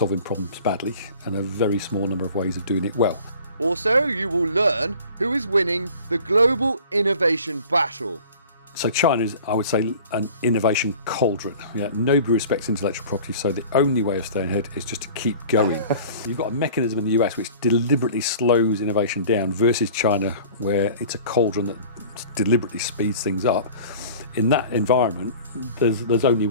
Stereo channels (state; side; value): inverted; both; correlation -0.44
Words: problems badly and a very small number of ways of doing it well. Also, you will learn who is winning the global innovation battle. So China is, I would say, an innovation cauldron. Nobody respects intellectual property, so the only way of staying ahead is just to keep going. You've got a mechanism in the US which deliberately slows innovation down versus China, where it's a cauldron that deliberately speeds things up. In that environment, there's only